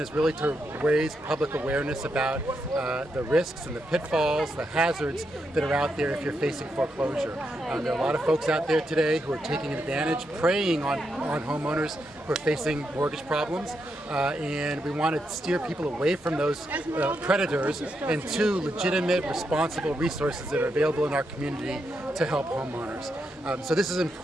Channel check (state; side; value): normal; both; correlation 0.83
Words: is really to raise public awareness about the risks and the pitfalls, the hazards that are out there if you're facing foreclosure. There are a lot of folks out there today who are taking advantage, preying on homeowners who are facing mortgage problems. And we want to steer people away from those predators and to legitimate, responsible resources that are available in our community to help homeowners. So this is an